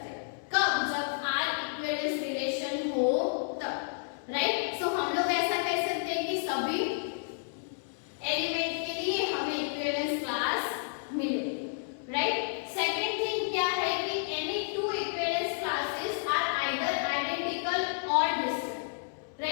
हैं। कब? जब आर इक्विवेलेंस रिलेशन हो तब, राइट। सो हम लोग ऐसा कह सकते हैं कि सभी एलिमेंट के लिए हमें इक्विवेलेंस क्लास मिले, राइट। सेकंड थिंग क्या है कि any two equivalence classes are either identical और डिफरेंट,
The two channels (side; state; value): right; silent; digital silence